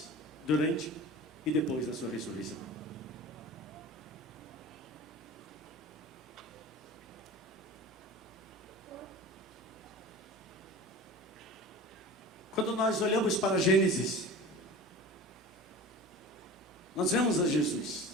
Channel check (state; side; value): normal; both; correlation 0.36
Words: durante e depois da sua ressurreição. Quando nós olhamos para Gênesis, nós vemos a Jesus